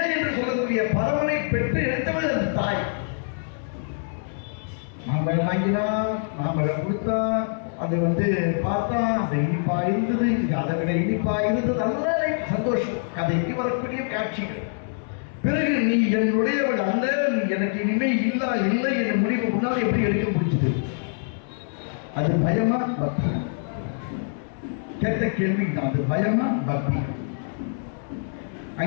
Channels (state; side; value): silent; right; digital silence